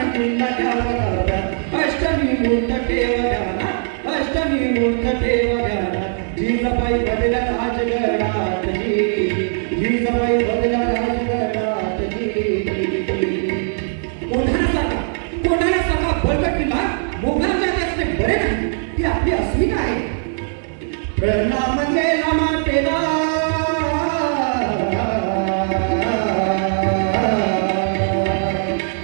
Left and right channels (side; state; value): left; silent; digital silence